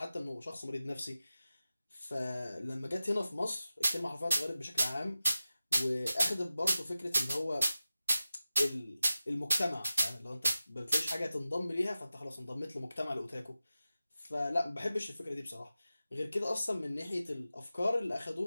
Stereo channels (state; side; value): inverted; both; correlation -0.94